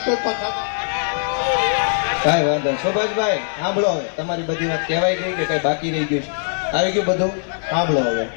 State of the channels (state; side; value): silent; right; 62 dB below the other